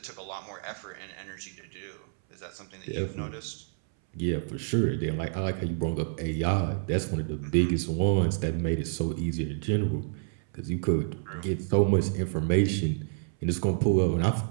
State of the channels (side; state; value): left; silent; 59 dB below the other